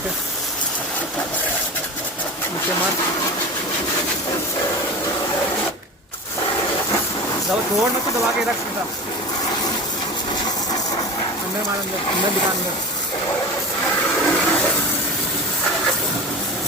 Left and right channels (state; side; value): normal; both; correlation 0.30